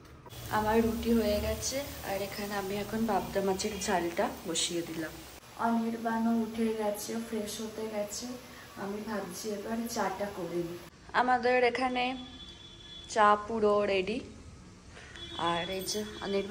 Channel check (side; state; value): both; identical; correlation 1.00